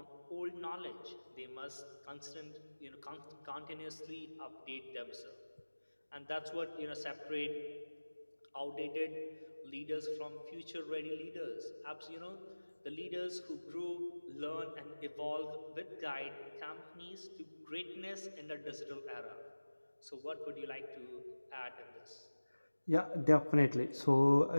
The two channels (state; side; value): inverted; both; correlation -1.00